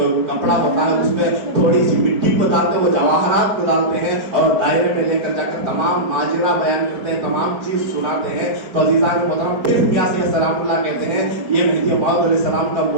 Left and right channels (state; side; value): late; left; 4.7 ms